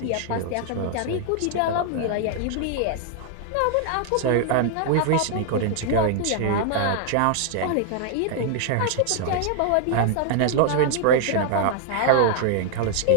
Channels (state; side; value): different; both; correlation 0.00